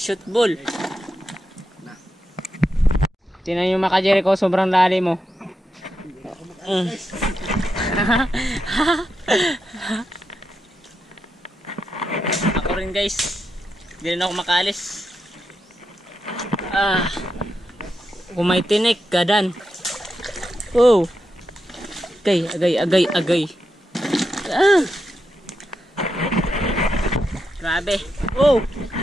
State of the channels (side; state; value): both; normal; correlation 0.86